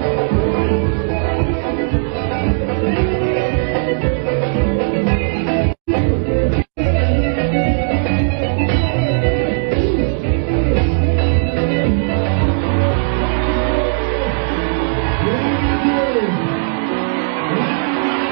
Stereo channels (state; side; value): silent; left; digital silence